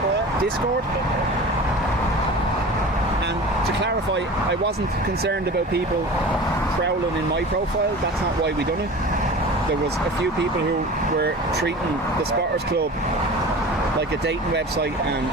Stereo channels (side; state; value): both; normal; correlation 0.36